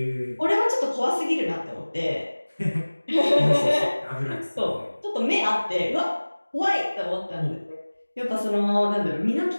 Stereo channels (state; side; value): inverted; both; correlation -1.00